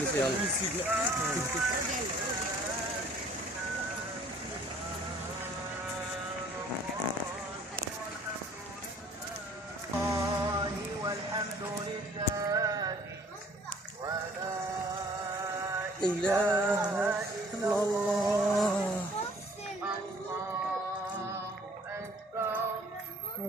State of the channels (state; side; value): normal; both; correlation 0.55